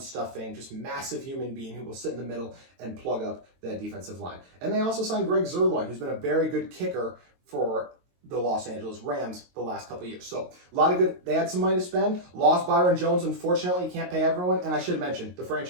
just massive human being who will sit in the middle and plug up that defensive line. And they also signed Greg Zuerlein, who's been a very good kicker for the Los Angeles Rams the last couple of years. So a lot of good. They had some money to spend. Lost Byron Jones. Unfortunately, you can't pay everyone. And I should mention the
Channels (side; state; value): left; late; 22 ms